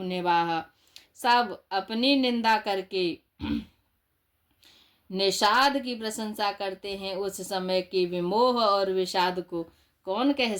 निभाया। सब अपनी निंदा करके निषाद की प्रशंसा करते हैं। उस समय के विमोह और विषाद को कौन कह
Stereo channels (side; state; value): both; identical; correlation 1.00